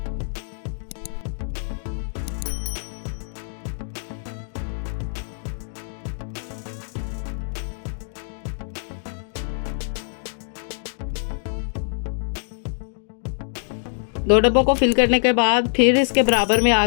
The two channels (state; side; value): silent; right; digital silence